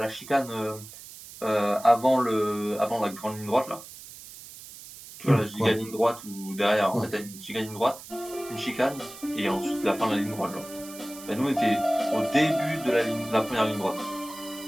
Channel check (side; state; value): right; noise; hiss, 16 dB below the sound